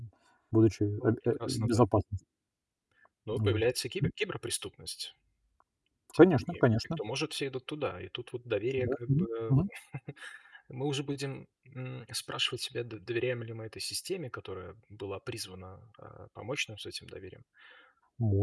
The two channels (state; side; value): identical; both; correlation 1.00